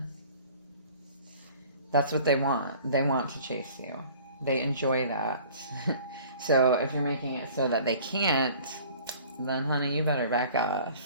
That's what they want. They want to chase you. They enjoy that. So if you're making it so that they can't, then honey, you better back off.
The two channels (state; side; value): inverted; both; correlation -0.49